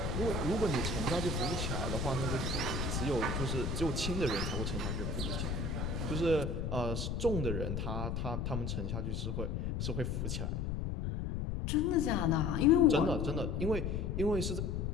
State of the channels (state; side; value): noise; left; rumble, 1 dB below the sound